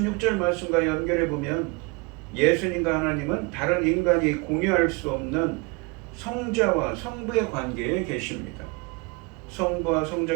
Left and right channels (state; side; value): quieter; left; 29.7 dB